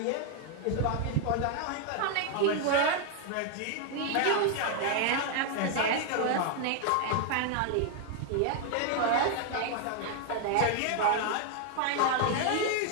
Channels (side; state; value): both; different; correlation 0.00